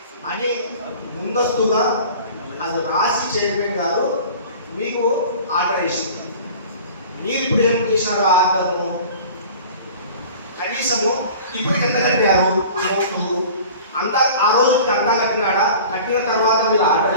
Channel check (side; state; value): both; inverted; correlation -0.42